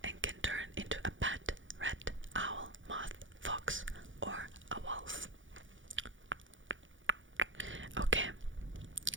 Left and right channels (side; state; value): left; late; 0.56 ms